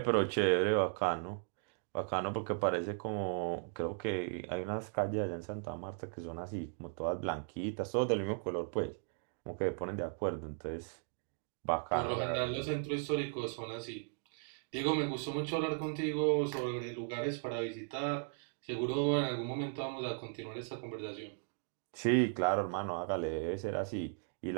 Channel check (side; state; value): left; silent; 53 dB below the other